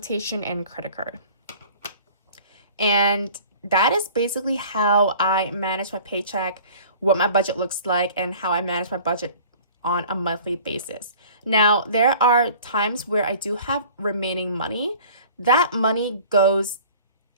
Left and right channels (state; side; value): inverted; both; correlation -0.47